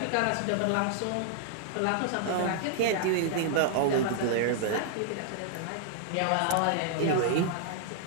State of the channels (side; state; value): both; different; correlation -0.01